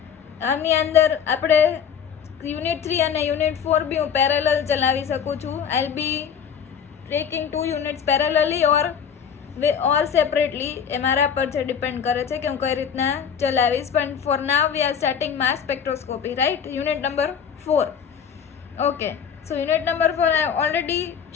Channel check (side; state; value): right; quieter; 7.6 dB